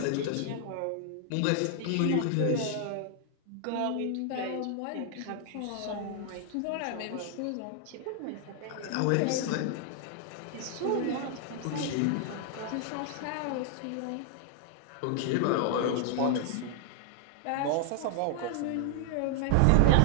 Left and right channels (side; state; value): both; different; correlation 0.00